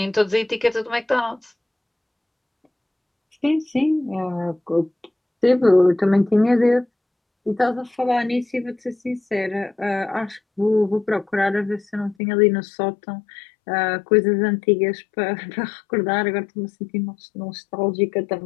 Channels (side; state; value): right; drops out; at 12.2 s